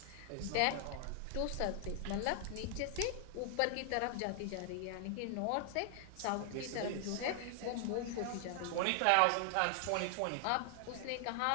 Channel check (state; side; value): different; both; correlation 0.00